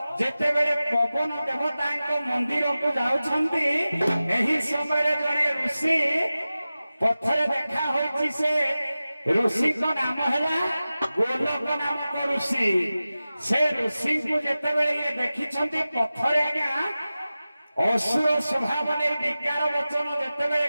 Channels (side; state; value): both; inverted; correlation -0.96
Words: जेतेबेले पवन देवता मंदिर को जाउछंती एही समय जने ऋषि पथरे देखा होइछि से ऋषि को नाम हैला गोलक नामक ऋषि से ऋषि को जेतेबेले ये देखिछंती पथरे आज्ञा असुर स्वभाव ने विज्ञान वचन जेतेबेले